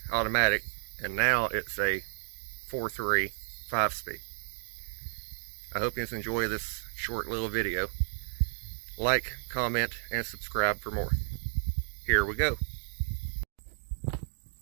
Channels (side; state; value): left; silent; digital silence